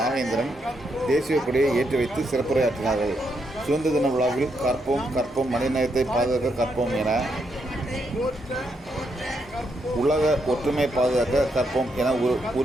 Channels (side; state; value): both; normal; correlation 0.79